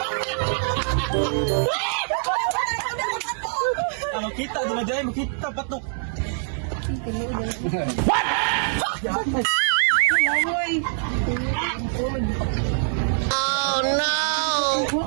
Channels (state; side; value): silent; left; digital silence